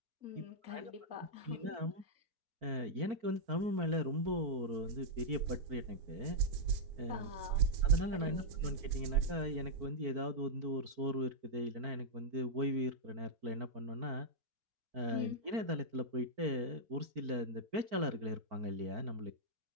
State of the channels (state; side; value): late; left; 4.5 ms